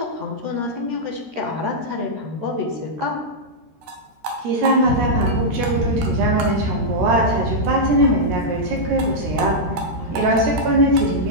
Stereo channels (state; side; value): late; left; 13 ms